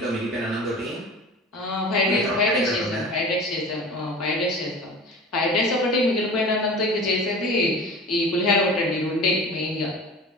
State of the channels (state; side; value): normal; both; correlation 0.38